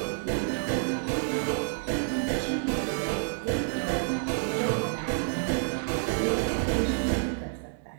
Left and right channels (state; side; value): silent; left; digital silence